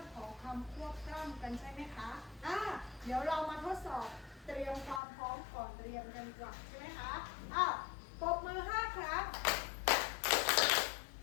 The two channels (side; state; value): right; drops out; at 5.0 s